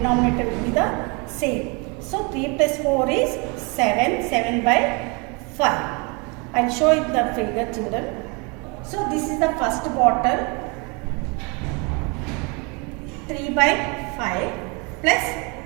will be the same. So 3 plus 4 is 7. 7/5. I'll show you the figure children. So this is the first bottle, 3/5 plus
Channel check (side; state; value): left; quieter; 30.9 dB